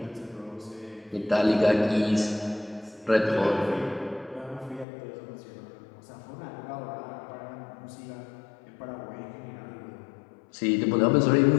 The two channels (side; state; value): right; drops out; at 4.9 s